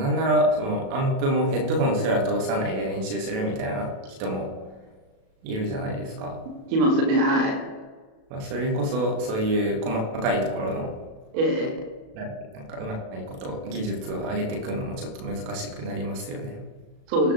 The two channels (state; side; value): late; left; 36 ms